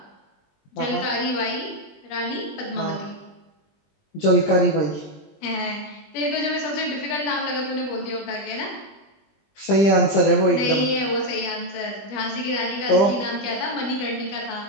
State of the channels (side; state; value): right; late; 20 ms